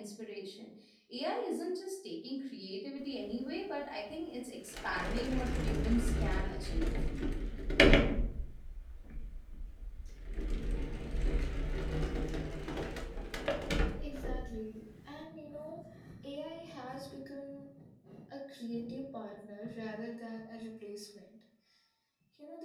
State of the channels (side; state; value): both; identical; correlation 1.00